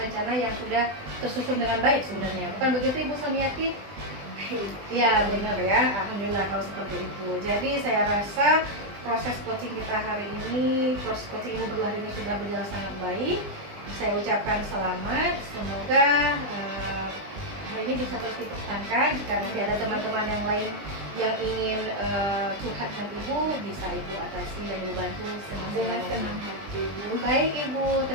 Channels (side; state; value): left; late; 20 ms